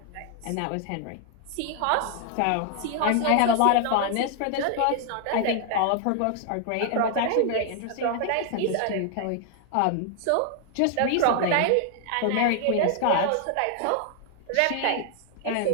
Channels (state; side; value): different; both; correlation 0.00